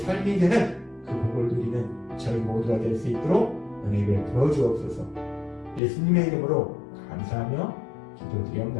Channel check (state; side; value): drops out; right; at 5.8 s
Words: 되는 그 복을 누리는 저희 모두가 될 수 있도록 은혜 베풀어 주옵소서. 예수님의 이름으로 감사하며